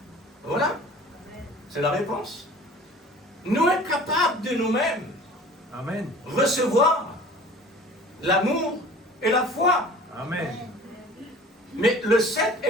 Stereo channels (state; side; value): normal; both; correlation 0.45